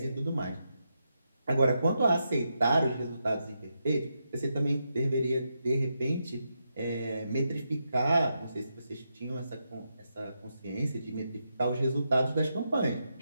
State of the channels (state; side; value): inverted; both; correlation -0.84